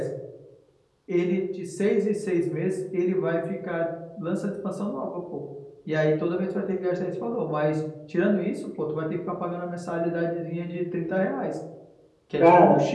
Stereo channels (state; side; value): identical; both; correlation 1.00